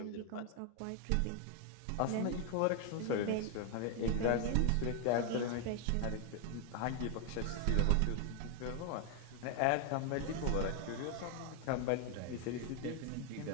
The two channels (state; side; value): different; both; correlation 0.00